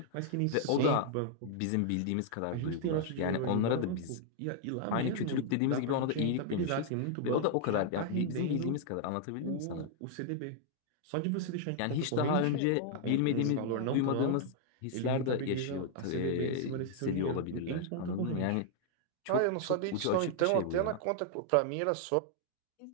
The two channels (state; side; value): different; both; correlation -0.01